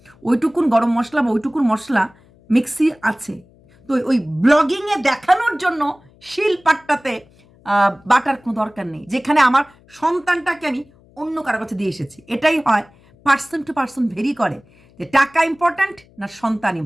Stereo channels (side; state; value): left; noise; hum, 29 dB below the sound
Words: ওইটুকুন গরম মশলা বা ওইটুকুন মশলা মিক্সি আছে। তো ওই ব্লগিংয়ে দেখানোর জন্য শিল পাট্টাতে বাটার কোনো দরকার নেই, যেখানে আমার সন্তানটাকে আমি অন্য কারো কাছে দিয়ে এসেছি। এটাই হয়, পার্সন টু পার্সন ভেরি করে, যে টাকা ইম্পর্ট্যান্ট না সন্তান